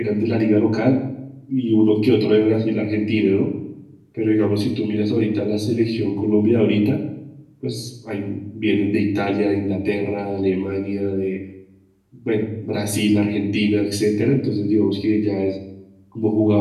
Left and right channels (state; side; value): identical; both; correlation 1.00